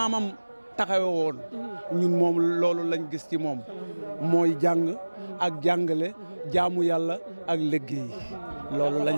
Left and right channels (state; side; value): inverted; both; correlation -1.00